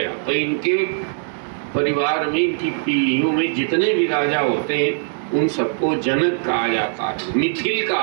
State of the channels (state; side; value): silent; left; 65 dB below the other